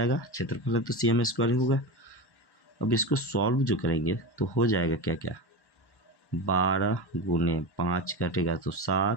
क्षेत्रफल है तो CM स्क्वायर ही होगा। अब इसको सॉल्व जो करेंगे तो हो जाएगा क्या क्या, 12 गुने 5 घटेगा तो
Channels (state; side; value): late; right; 1.1 ms